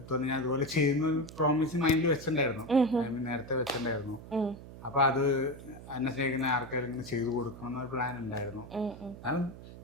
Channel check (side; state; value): right; noise; hum, 15 dB below the sound